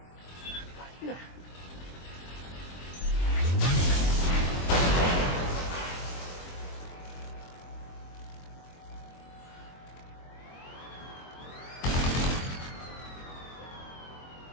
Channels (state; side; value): late; right; 23 ms